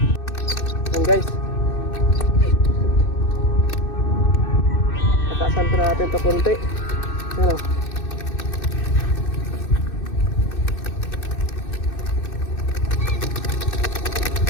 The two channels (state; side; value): late; right; 2.6 ms